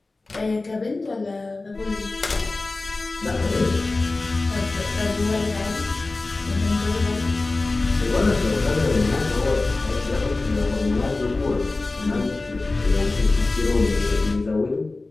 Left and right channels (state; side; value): quieter; right; 3.3 dB